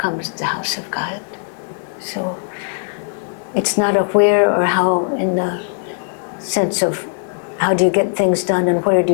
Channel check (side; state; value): right; silent; digital silence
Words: the house of God. So it's not a where or how in the sense of how do you get things done and where do